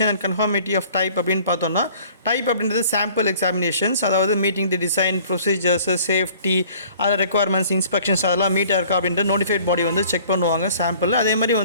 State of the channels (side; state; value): both; inverted; correlation -0.52